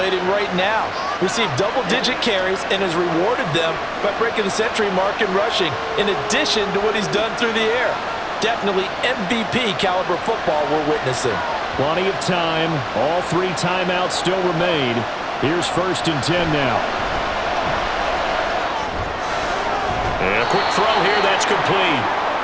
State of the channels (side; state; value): both; identical; correlation 1.00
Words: right now. Received double-digit carries and has rewarded them by breaking the century mark in rushing, in addition to what he's done through the air. Definitely MVP caliber football we're witnessing. Plenty of time. All 3 timeouts still remain. Here's 1st and 10 now. And a quick throw here, that's complete.